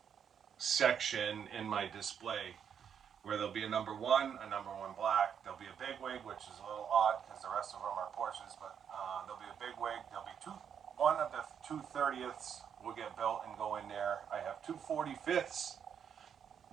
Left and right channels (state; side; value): quieter; left; 7.9 dB